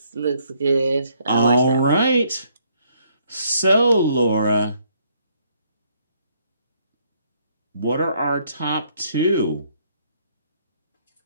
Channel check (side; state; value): both; inverted; correlation -0.69